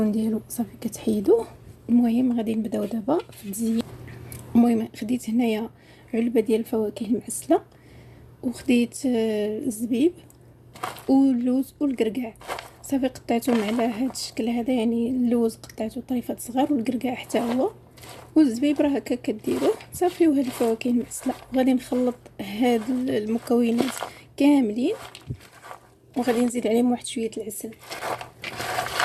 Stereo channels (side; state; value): both; identical; correlation 1.00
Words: ديالو صافي كتحيدوه. المهم غادي نبداو دابا في التزيين. المهم خديت هنايا علبه ديال الفواكه المعسله، وخديت الزبيب واللوز والقرقاع. صافي قطعتهم على هذا الشكل هذا، يعني اللوز قطعته طريفات صغار والقرقاع حتى هو، والزبيب راه هكا كديروه صافي. وهاد الفواكه المعسله غادي نخلط هاد المكونات كاملين، وغادي نزيد عليهم واحد شويه العسل.